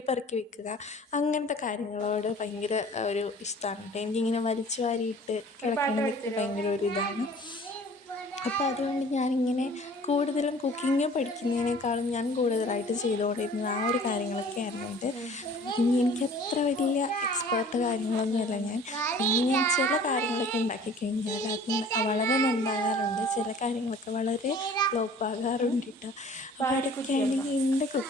പെറുക്കി വെക്കുക അങ്ങനത്തെ കാര്യങ്ങളോട് ഭയങ്കര ഒരു ഇഷ്ടമാണ് കേട്ടോ. എനിക്കിങ്ങനെ വലിച്ചു വാരിയിട്ട് കിടക്കണതൊക്കെ ഭയങ്കര ഒരു ഇതാണ്. അപ്പോൾ അതുകൊണ്ട് ഞാനിങ്ങനെ കൂടുതലും കുക്കിങ് പഠിക്കുന്നതിനേക്കാളും ഞാൻ കൂടുതലായിട്ട് ചെയ്തുകൊണ്ടിരുന്നത് ആ ഒരു കാര്യങ്ങളൊക്കെ ആയിരുന്നുണ്ട്. കുക്കിങ് എനിക്ക് അത്ര വലിയ എക്സ്പേർട്ട് കാര്യങ്ങളൊന്നുമല്ല ഞാൻ. പിന്നെ ഞാൻ ചില കാര്യങ്ങളൊക്കെ ഉണ്ടാക്കി കഴിഞ്ഞാൽ അത് വളരെ നന്നാകാറുണ്ട്. ചില കാര്യങ്ങളൊക്കെ വളരെ ഫ്ലോപ്പാകാറുണ്ട് കേട്ടോ. അപ്പോൾ അതൊക്കെയാണ് എൻ്റെ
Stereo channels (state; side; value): normal; both; correlation 0.48